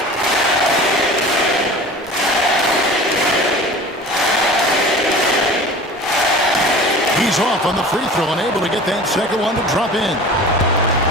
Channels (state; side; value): normal; both; correlation 0.39